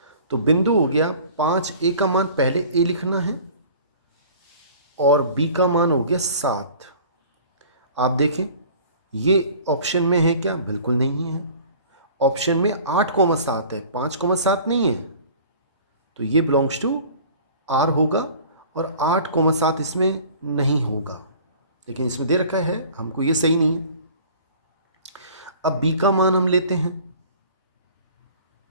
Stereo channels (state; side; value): inverted; both; correlation -0.46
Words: तो बिंदु हो गया 5। a का मान पहले a लिखना है और b का मान हो गया 7। आप देखें ये ऑप्शन में है क्या? बिल्कुल नहीं है। ऑप्शन में 8,7 है, 5,7 नहीं है। तो ये बिलोंग्स टू आर होगा और 8,7 इसमें नहीं होगा, लेकिन इसमें दे रखा है हमको, ये सही नहीं है। अब b का मान हम लेते हैं।